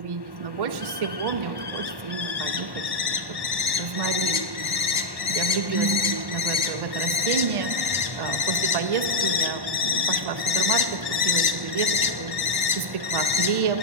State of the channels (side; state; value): left; late; 1.1 ms